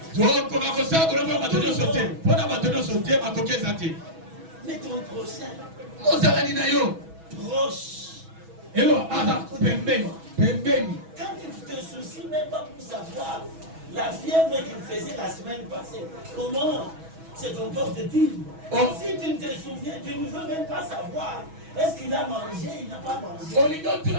Mais ton prochain, proche. Quand tu te soucies même pas pour savoir la fièvre qu'il faisait la semaine passée, comment se comporte-t-il? Si tu ne te souviens, tu ne veux même pas savoir. Est-ce qu'il a mangé? Il n'a pas mangé.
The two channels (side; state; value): left; late; 6.2 ms